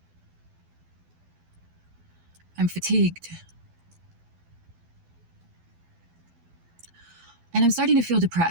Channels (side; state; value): left; late; 12 ms